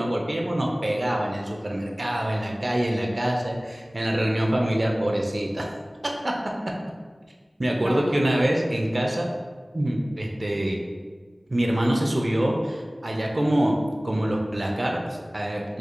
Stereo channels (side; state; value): both; normal; correlation 0.98